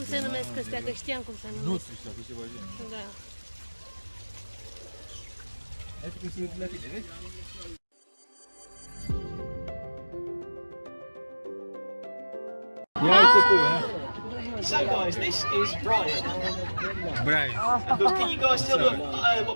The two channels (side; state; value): both; inverted; correlation -1.00